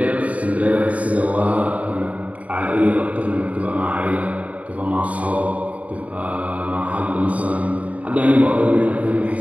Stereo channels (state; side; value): late; left; 0.068 ms